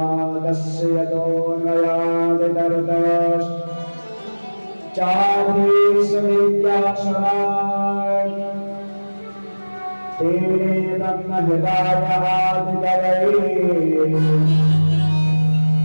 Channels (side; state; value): both; inverted; correlation -1.00